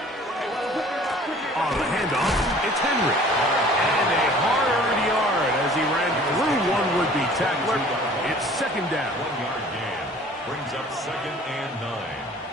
On the handoff, it's Henry. And a hard-earned yard as he ran through one would-be tackler. It's 2nd down. 1-yard gain. Brings up 2nd and 9.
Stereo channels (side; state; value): both; normal; correlation 0.50